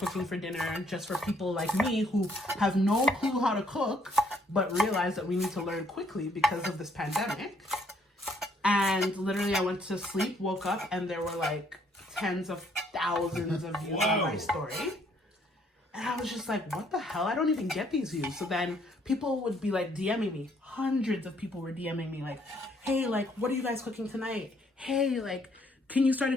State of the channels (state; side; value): normal; both; correlation 0.66